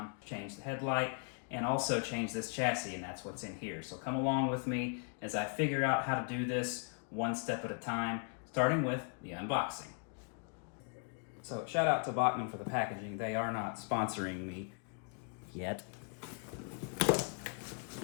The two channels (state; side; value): quieter; right; 39.2 dB